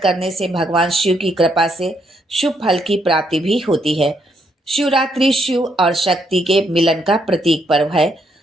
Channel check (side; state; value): both; normal; correlation 0.75